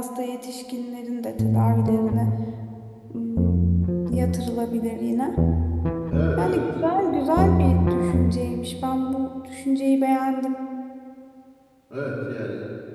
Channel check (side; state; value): both; identical; correlation 1.00